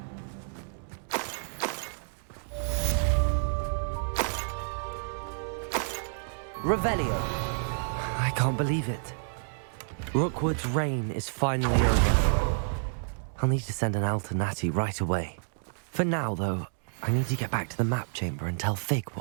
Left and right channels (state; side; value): silent; left; digital silence